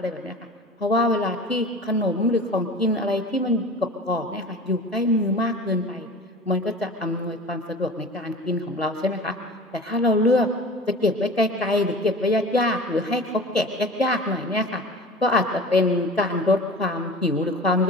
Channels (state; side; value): normal; both; correlation 0.38